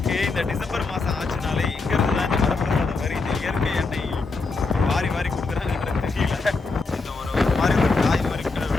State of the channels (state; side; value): quieter; right; 3.9 dB